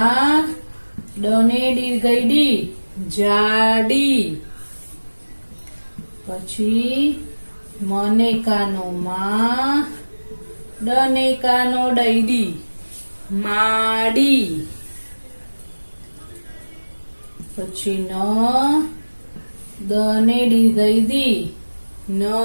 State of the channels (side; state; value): both; inverted; correlation -1.00